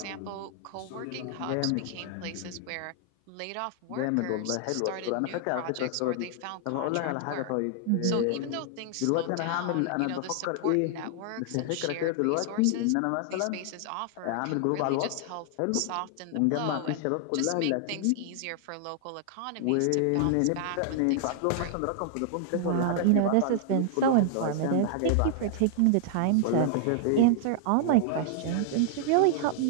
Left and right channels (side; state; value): both; different; correlation -0.01